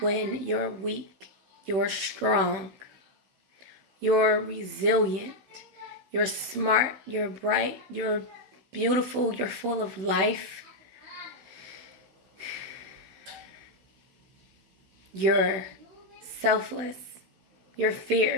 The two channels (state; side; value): late; left; 16 ms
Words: you're weak, you're strong. You're resilient. You're smart. You're bright. You're beautiful. You're full of life. You're selfless. You're